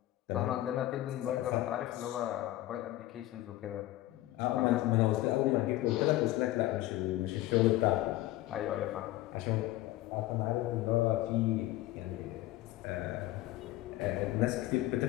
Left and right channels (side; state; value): right; quieter; 16.0 dB